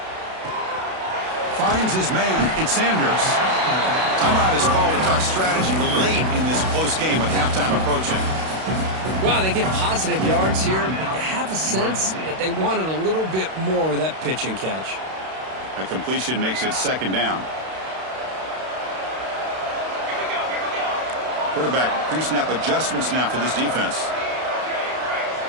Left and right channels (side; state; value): left; late; 32 ms